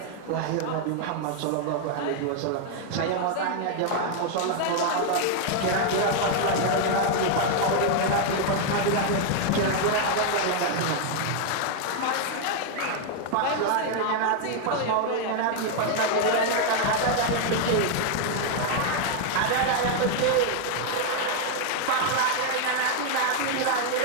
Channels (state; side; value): different; both; correlation 0.00